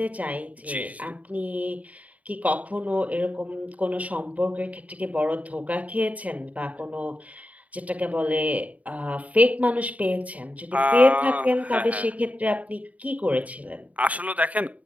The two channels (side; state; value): left; late; 0.070 ms